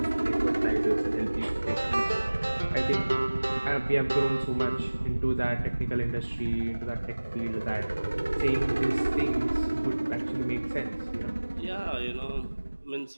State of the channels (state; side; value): inverted; both; correlation -1.00